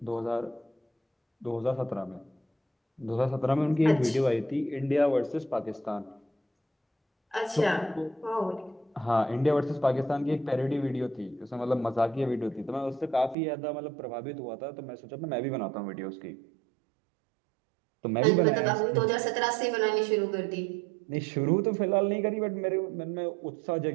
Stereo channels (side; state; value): left; drops out; at 13.4 s